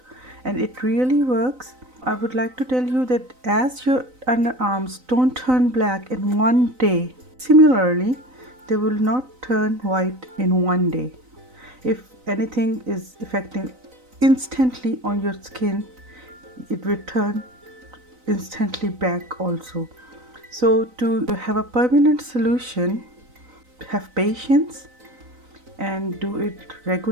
and it really works. I would like to tell you that as your underarms don't turn black in one day, similarly they will not turn white in one day. If anything is affecting instantly on your skin, it will turn instantly back also. So to have a permanent solution, have patience and do it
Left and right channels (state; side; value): late; left; 3.9 ms